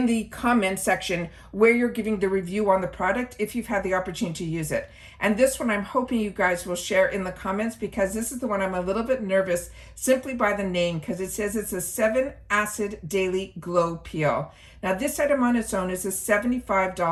the comment section where you're giving the review on the product if you've had the opportunity to use it. And this one I'm hoping you guys will share in the comments, because this is the one I'm a little bit nervous simply by the name, because it says it's a 7-acid daily glow peel. Now this item on its own is a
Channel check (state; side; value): identical; both; correlation 1.00